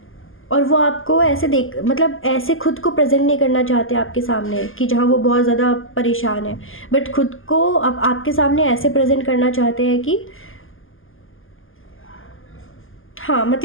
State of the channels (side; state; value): right; late; 0.59 ms